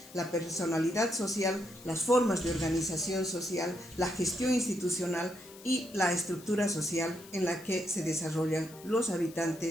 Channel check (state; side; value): noise; left; hiss, 20 dB below the sound